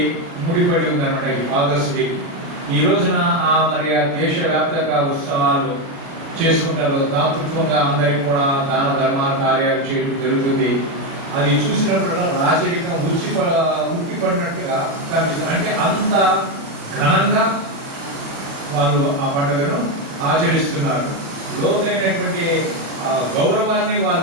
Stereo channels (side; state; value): left; late; 36 ms